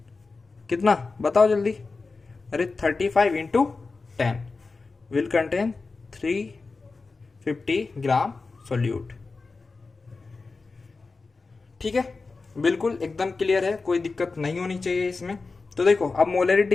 कितना, बताओ जल्दी, अरे 35 into 10 will contain 350 gram solute. ठीक है, बिल्कुल एकदम क्लियर है, कोई दिक्कत नहीं होनी चाहिए इसमें। तो देखो अब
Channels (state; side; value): quieter; right; 4.0 dB